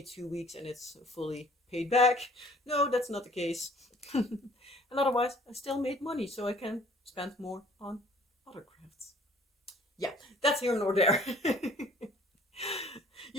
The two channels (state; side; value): normal; both; correlation 0.55